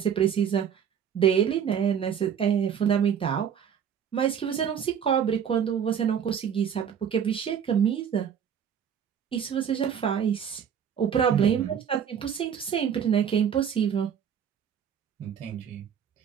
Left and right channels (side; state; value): left; quieter; 8.2 dB